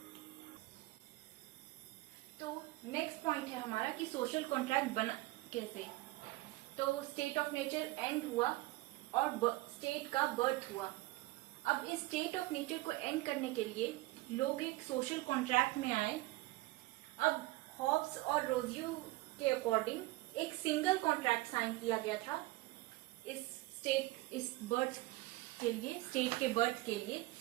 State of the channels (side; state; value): left; quieter; 19.6 dB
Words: तो नेक्स्ट पॉइंट है हमारा कि सोशल कॉन्ट्रैक्ट बना कैसे. तो स्टेट ऑफ नेचर एंड हुआ और स्टेट का बर्थ हुआ. अब इस स्टेट ऑफ नेचर को एंड करने के लिए लोग एक सोशल कॉन्ट्रैक्ट में आए. अब हॉब्स और रोजियो के अकॉर्डिंग एक सिंगल कॉन्ट्रैक्ट साइन किया गया था इस बर्थ के लिए, स्टेट के बर्थ के लिए.